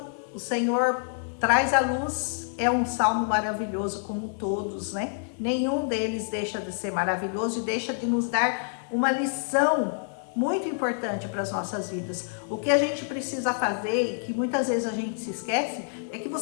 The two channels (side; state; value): right; silent; digital silence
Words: o Senhor traz à luz, é um salmo maravilhoso como todos, né? Nenhum deles deixa de ser maravilhoso e deixa de nos dar uma lição muito importante para as nossas vidas. O que a gente precisa fazer, e que muitas vezes a gente se esquece, é que